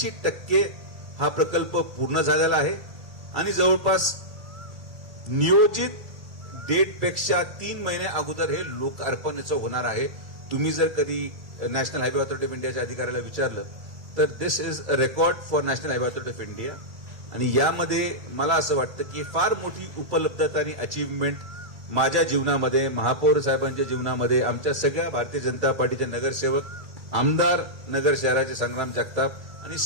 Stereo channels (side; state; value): left; late; 2.3 ms